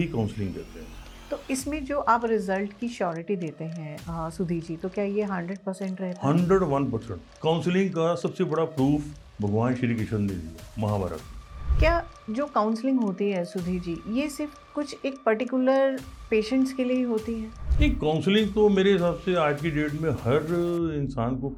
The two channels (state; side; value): identical; both; correlation 1.00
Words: काउंसलिंग कहते हैं। तो इसमें जो आप रिजल्ट की श्योरिटी देते हैं सुधीर जी, तो क्या ये 100% रहता है? 101% काउंसलिंग का सबसे बड़ा प्रूफ भगवान श्री कृष्ण ने दिया महाभारत में। क्या जो काउंसलिंग होती है सुधीर जी, ये सिर्फ कुछ एक पर्टिकुलर पेशेंट्स के लिए ही होती है? नहीं, काउंसलिंग तो मेरे हिसाब से आज की डेट में हर इंसान को